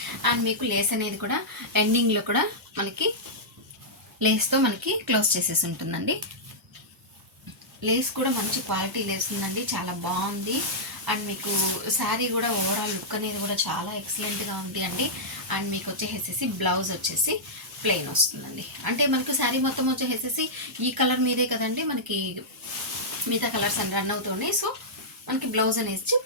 అండ్ మీకు లేస్ అనేది కూడా ఎండింగ్లో కూడా మనకి లేస్తో మనకి క్లోజ్ చేసేసి ఉంటుందండి. లేస్ కూడా మంచి క్వాలిటీ లేస్ ఉందండి, చాలా బాగుంది. అండ్ మీకు శారీ కూడా ఓవరాల్ లుక్ అనేది కూడా చాలా ఎక్సలెంట్గా ఉంది అండి. అండ్ మీకు వచ్చేసేసి బ్లౌజ్ వచ్చేసి ప్లెయిన్ వస్తుందండి. అంటే మనకు శారీ మొత్తం వచ్చేసేసి ఈ కలర్ మీదే కదండి, మనకి మిగతా కలర్స్ అని రన్ అవుతున్నాయి. సో మనకి బ్లౌజ్ అనేది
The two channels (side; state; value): both; normal; correlation -0.11